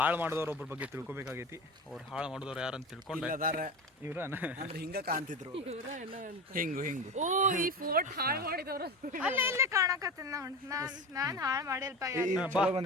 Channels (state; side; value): normal; both; correlation 0.28